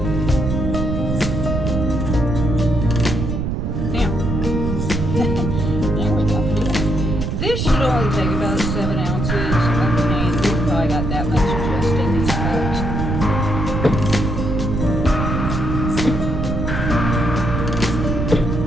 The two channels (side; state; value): right; noise; rumble, 1 dB below the sound